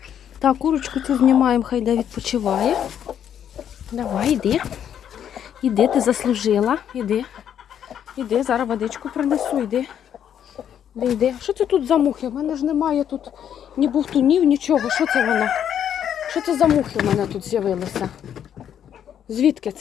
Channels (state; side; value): quieter; right; 9.3 dB